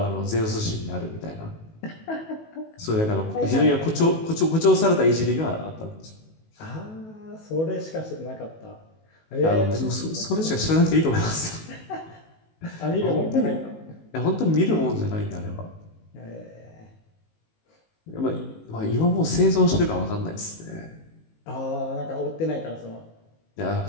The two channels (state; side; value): late; right; 19 ms